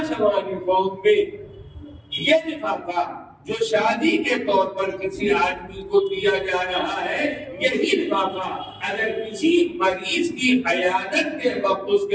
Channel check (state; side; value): identical; both; correlation 1.00